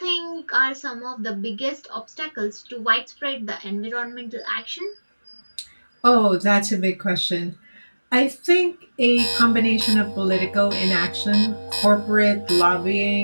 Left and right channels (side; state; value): both; inverted; correlation -1.00